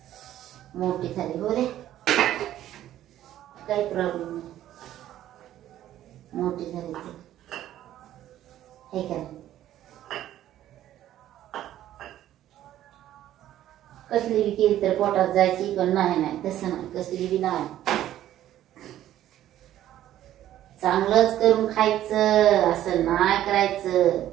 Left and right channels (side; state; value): left; quieter; 12.6 dB